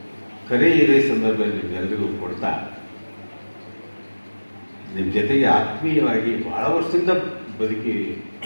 ಕರೆ ಇದೇ ಸಂದರ್ಭದಲ್ಲಿ ನಿಮ್ಮೆಲ್ಲರಿಗೂ ಕೊಡ್ತಾ, ನಿಮ್ಮ ಜೊತೆಗೆ ಆತ್ಮೀಯವಾಗಿ ಬಹಳ ವರ್ಷದಿಂದ ಬದುಕಿ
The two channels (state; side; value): inverted; both; correlation -1.00